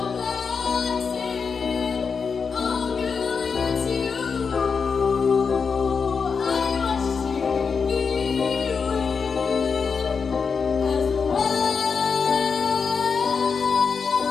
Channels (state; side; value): quieter; right; 5.6 dB